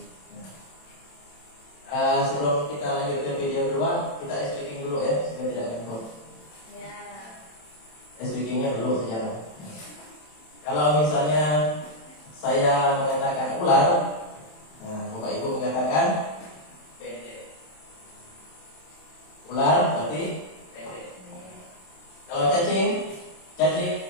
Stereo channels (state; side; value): late; right; 27 ms